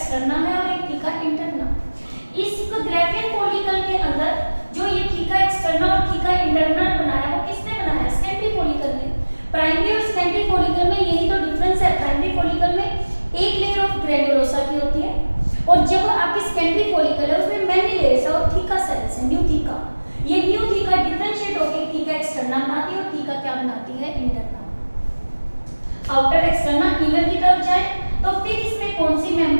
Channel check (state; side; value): inverted; both; correlation -1.00